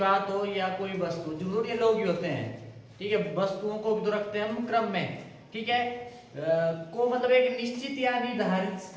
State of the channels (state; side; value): identical; both; correlation 1.00